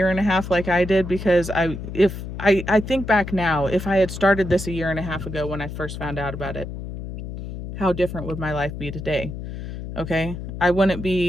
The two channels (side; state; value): left; noise; hum, 8 dB below the sound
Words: and a half like I did, because I think back now, if I had started this a year and a half ago when I first found out about it, how different would my life be today? Okay. I wouldn't